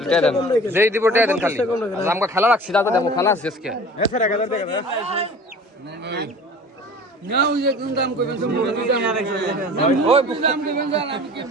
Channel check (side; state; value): both; normal; correlation 0.42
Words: যেই দিব টাকা দেন খালি আমগো খেলা রাখছি দাদা দেখো খেলা আছে আজকে নাও যে কোন দাম কইবেন মুরগি দাম ওই